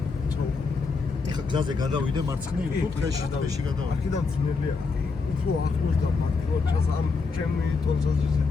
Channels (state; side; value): quieter; right; 4.5 dB